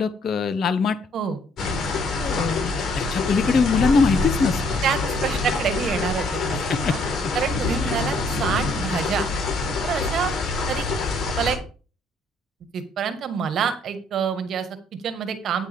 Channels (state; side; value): normal; both; correlation 0.65